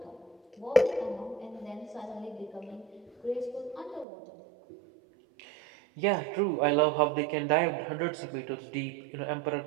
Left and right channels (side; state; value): left; drops out; at 4.0 s